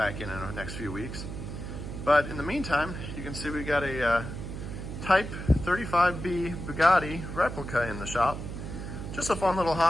in the next few weeks. But in the meantime, you can see we got a Type 35B Bugatti replica in the shop. Just a fun little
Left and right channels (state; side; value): noise; right; hum, 7 dB below the sound